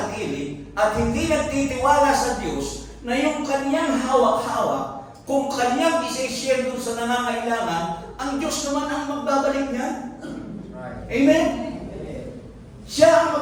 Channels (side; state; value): both; identical; correlation 1.00